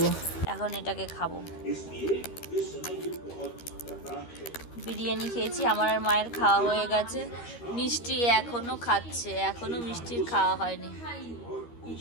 এখন এটাকে খাবো। বিরিয়ানি খেয়েছি, আমার আর মায়ের খাওয়া হয়ে গেছে। মিষ্টি এখনো খাচ্ছে, এখনো মিষ্টির খাওয়া হয়নি,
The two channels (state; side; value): late; right; 13 ms